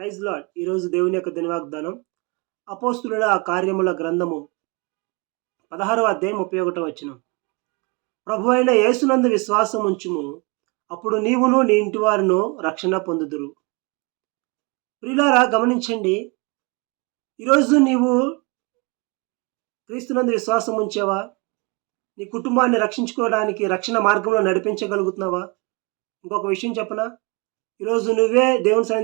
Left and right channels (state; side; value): quieter; left; 29.5 dB